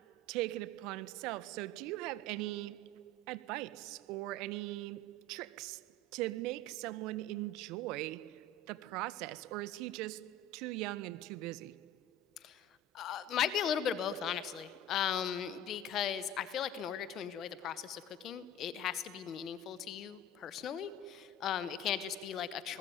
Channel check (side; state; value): both; normal; correlation 0.37